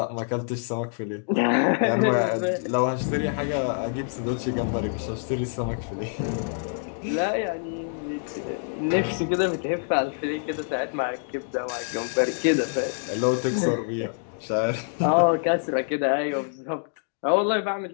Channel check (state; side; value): silent; right; digital silence